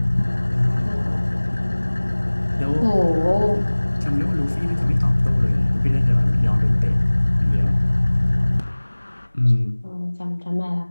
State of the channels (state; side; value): inverted; both; correlation -1.00